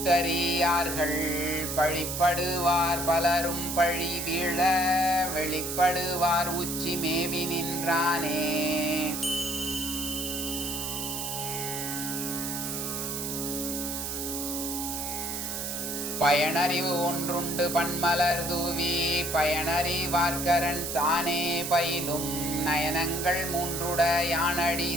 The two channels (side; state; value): right; noise; hiss, 4 dB below the sound